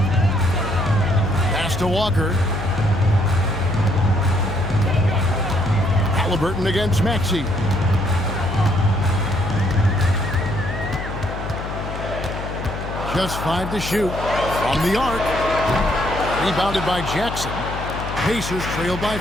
Pass to Walker. Halliburton against Maxey. Just 5 to shoot from the arc. Rebounded by Jackson. Pacers trail by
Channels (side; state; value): left; noise; hum, 7 dB below the sound